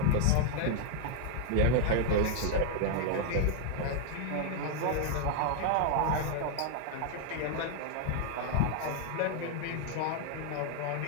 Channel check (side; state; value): both; different; correlation 0.00